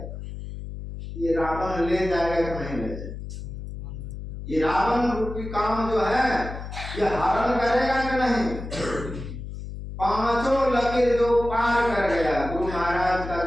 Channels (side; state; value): left; noise; hum, 9 dB below the sound